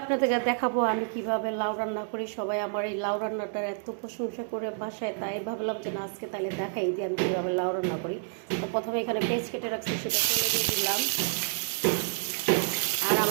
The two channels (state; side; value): silent; left; digital silence